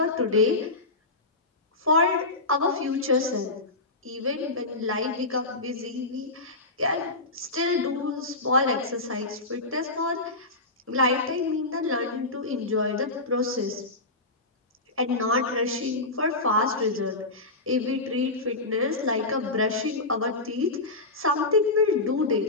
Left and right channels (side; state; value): right; quieter; 3.0 dB